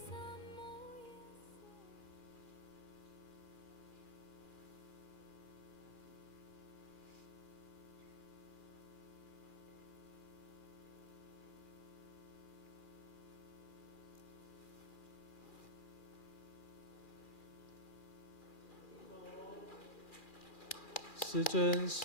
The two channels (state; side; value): late; right; 2.4 ms